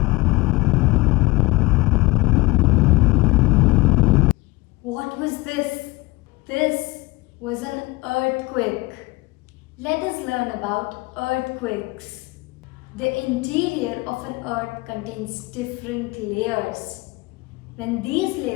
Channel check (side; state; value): right; quieter; 22.3 dB